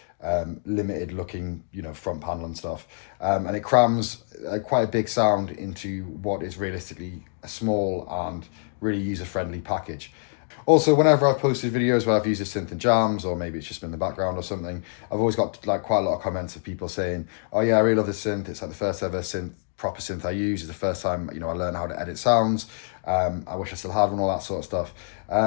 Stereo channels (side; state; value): right; silent; digital silence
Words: limited looking, front panel and stuff. And it crams quite a big sound into what is realistically a small and really user-friendly package. Also, whenever I've posted videos where I've used a synth in jams, or maybe it's just been in the background or something, I've always got like quite a lot of comments of people saying, oh yeah, I really love this synth. It's like the first ever proper synth I use. It's the first time, I learned how to edit sounds. I wish I still had one, all that sort of stuff.